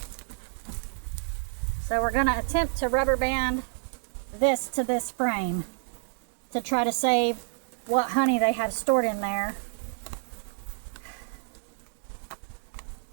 So we're going to attempt to rubber band this to this frame to try to save what honey they have stored in there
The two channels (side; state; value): left; silent; digital silence